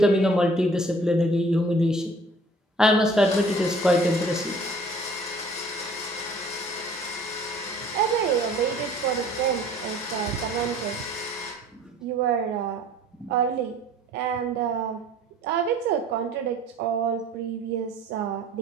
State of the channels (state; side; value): normal; both; correlation 0.52